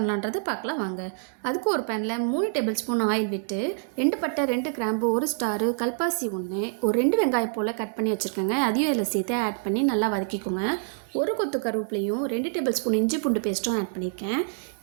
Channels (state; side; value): silent; left; 61 dB below the other